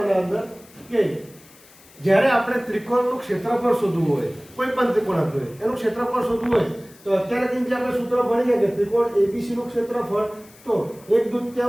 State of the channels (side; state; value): left; noise; hiss, 25 dB below the sound